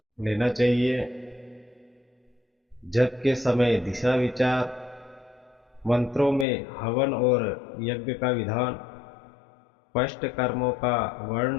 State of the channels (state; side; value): drops out; right; at 6.5 s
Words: लेना चाहिए, जप के समय दिशा विचार, मंत्रों में हवन और यज्ञ का विधान, स्पष्ट कर्मों का